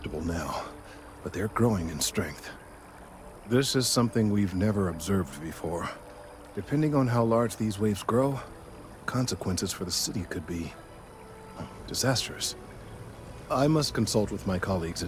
now, but they're growing in strength. This is something we've never observed before. Depending on how large these waves grow, consequences for the city could be disastrous. I must consult with my colleagues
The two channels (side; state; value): both; identical; correlation 1.00